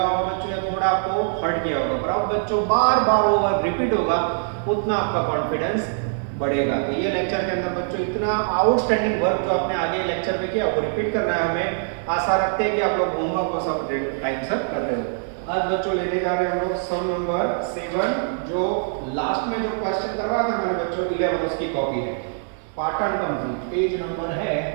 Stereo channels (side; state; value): left; silent; 63 dB below the other